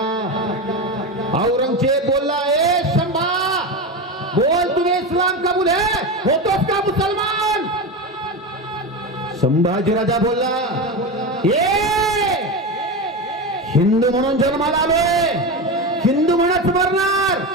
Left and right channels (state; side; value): normal; both; correlation 0.20